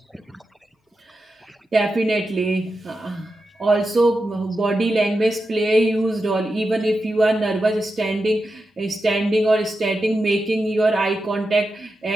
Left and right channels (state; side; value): normal; both; correlation 0.90